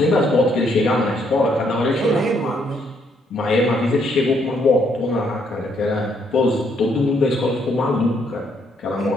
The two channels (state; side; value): normal; both; correlation 0.71